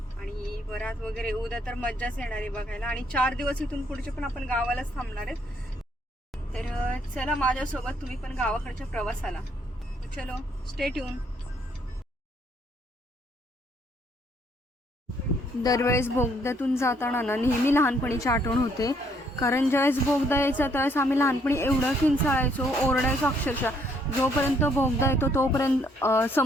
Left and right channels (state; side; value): normal; both; correlation 0.68